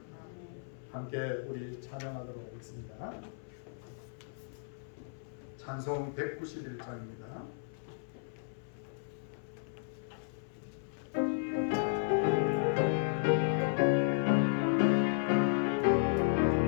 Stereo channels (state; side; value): silent; right; 55 dB below the other